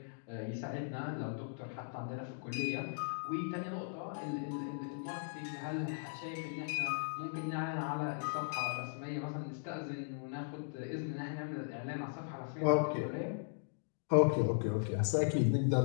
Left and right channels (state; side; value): silent; right; digital silence